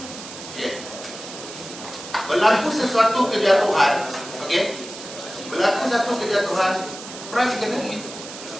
Okay. Berlaku sesuatu kejatuhan. Okay. Berlaku satu kejatuhan. Price kena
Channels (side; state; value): right; noise; hiss, 12 dB below the sound